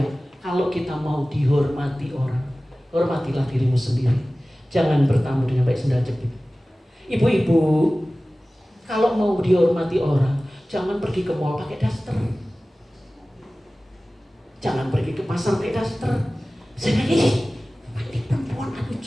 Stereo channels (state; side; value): normal; both; correlation 0.97